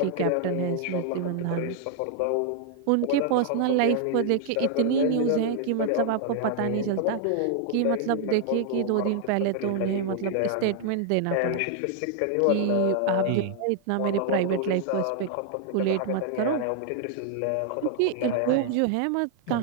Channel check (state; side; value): different; both; correlation 0.00